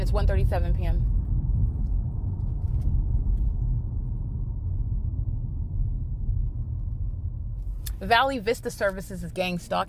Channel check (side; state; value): both; identical; correlation 1.00